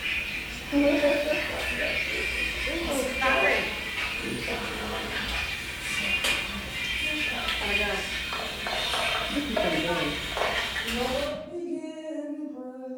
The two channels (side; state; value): both; identical; correlation 1.00